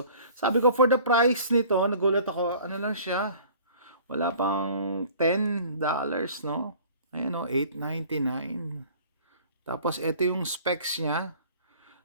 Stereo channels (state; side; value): inverted; both; correlation -0.48